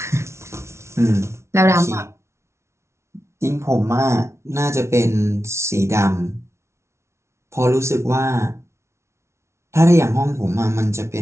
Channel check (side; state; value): left; late; 0.13 ms